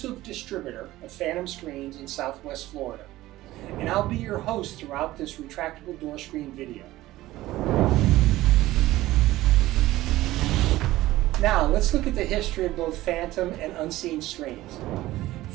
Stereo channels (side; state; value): left; quieter; 16.5 dB